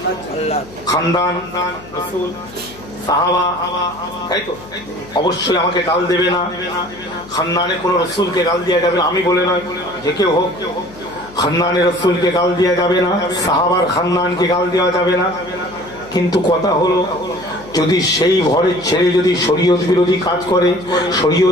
খানদান, রাসূল, সাহাবা, তাই তো? অবশ্যই আমাকে গাল দেবে না, খানদানে কোনো রাসূলকে গাল দেওয়া যাবে না, আমি বলে নয়, যে কেউ হোক, খানদানে রাসূলকে গাল দেওয়া যাবে না, সাহাবার খানদানকে গাল দেওয়া যাবে না। কিন্তু কথা হলো, যদি সেই ঘরের ছেলে যদি শরীয়ত বিরোধী কাজ করে,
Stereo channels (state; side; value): noise; left; hum, 19 dB below the sound